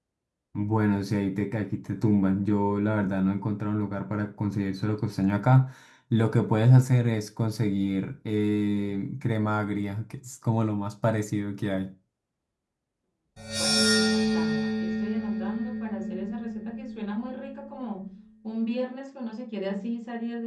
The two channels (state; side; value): identical; both; correlation 1.00